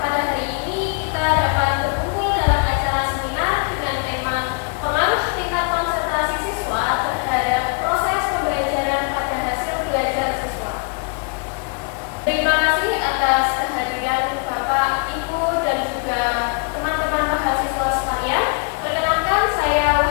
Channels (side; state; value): right; quieter; 37.4 dB